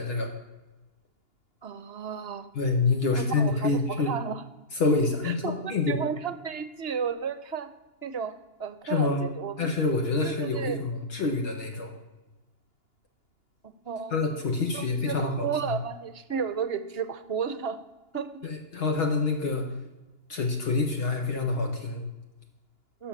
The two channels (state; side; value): late; right; 2.9 ms